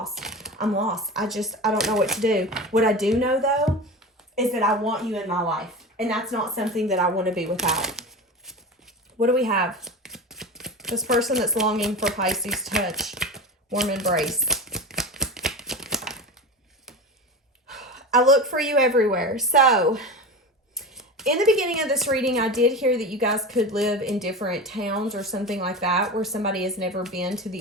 I don't know what to do. What I do know, though, is that I want you in my life. And that's not something that I want to be without. What do we have? This person that's longing for Pisces touch, warm embrace. I look for you everywhere. So, in the beginning of this reading, I did hear that you guys could live in different towns or something like that, where somebody has never been to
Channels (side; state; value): both; normal; correlation 0.28